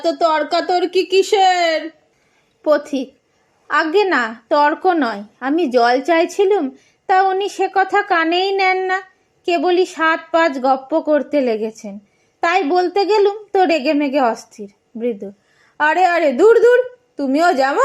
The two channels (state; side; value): identical; both; correlation 1.00